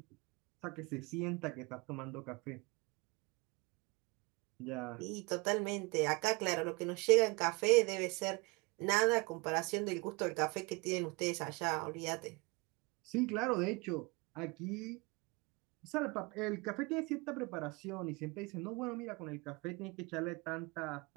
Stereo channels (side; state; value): left; quieter; 27.4 dB